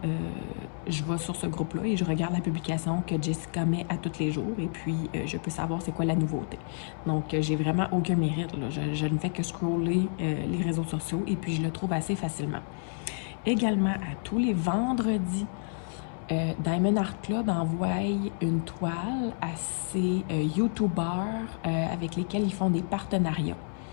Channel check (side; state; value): right; silent; 58 dB below the other